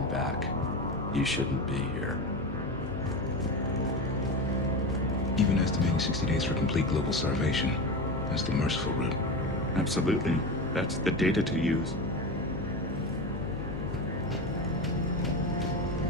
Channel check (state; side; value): noise; left; hum, 8 dB below the sound